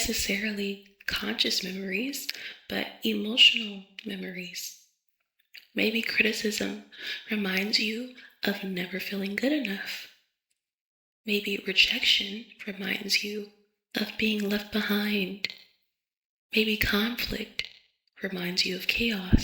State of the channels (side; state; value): both; identical; correlation 1.00